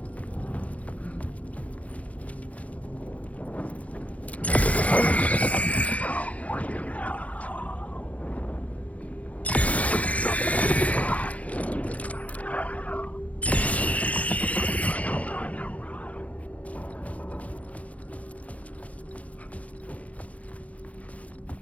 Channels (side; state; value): right; late; 0.067 ms